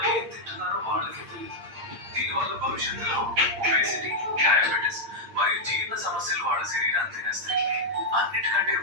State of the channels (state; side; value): late; left; 8.7 ms